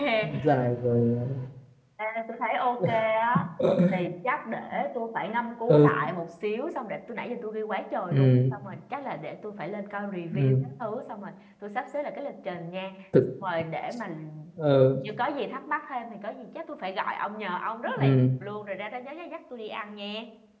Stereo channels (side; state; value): both; identical; correlation 1.00